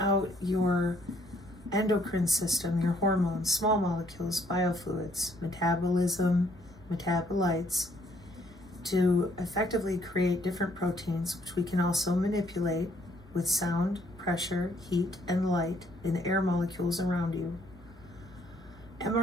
your endocrine system, your hormones, small molecules, biofluids, metabolism, metabolites, to effectively create different proteins, which we can also manipulate with sound, pressure, heat, and light in the air molecules around you.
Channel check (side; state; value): both; normal; correlation 0.66